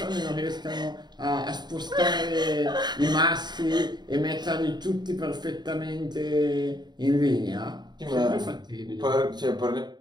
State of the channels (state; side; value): late; left; 0.21 ms